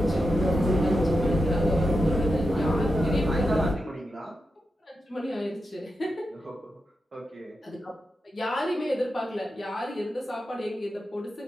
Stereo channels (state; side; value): normal; both; correlation 0.88